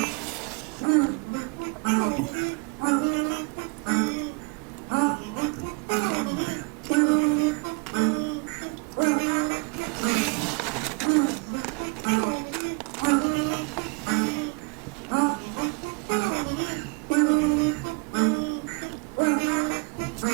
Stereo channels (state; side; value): quieter; left; 30.9 dB